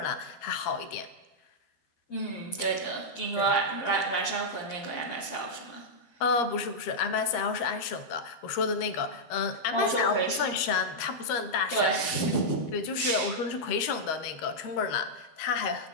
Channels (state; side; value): late; right; 13 ms